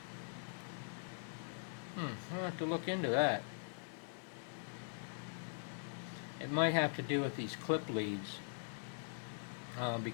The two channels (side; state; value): right; silent; digital silence